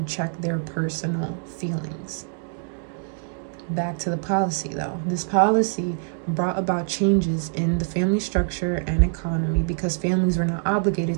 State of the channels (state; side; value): silent; left; 57 dB below the other